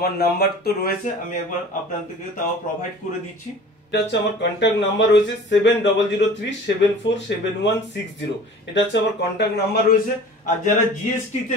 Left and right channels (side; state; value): both; normal; correlation 0.43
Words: নাম্বার তো রয়েছে, আমি একবার আপনাদেরকে তাও প্রোভাইড করে দিচ্ছি। এটা হচ্ছে আমার কন্ট্যাক্ট নাম্বার রয়েছে 7003747160। এটা হচ্ছে আমার কন্ট্যাক্ট নাম্বার রয়েছে। আর যারা জিএসটি তে